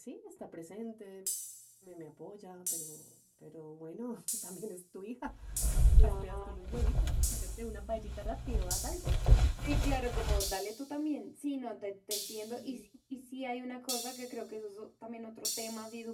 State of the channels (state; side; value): identical; both; correlation 1.00